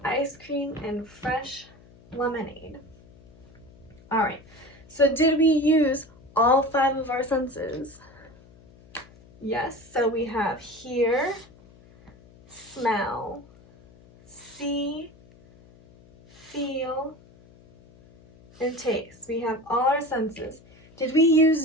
ice cream and fresh lemonade. All right, so did we use all 5 of our senses? Yes, so we have hear, smell, see, feel, and taste. We have all our senses. Did we use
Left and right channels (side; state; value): left; noise; hum, 25 dB below the sound